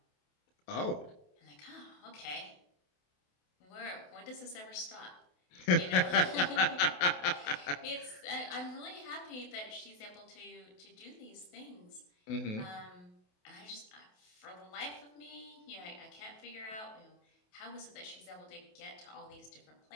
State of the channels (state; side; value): late; right; 28 ms